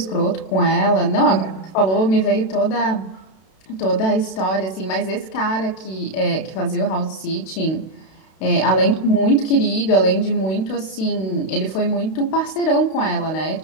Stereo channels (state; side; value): late; right; 32 ms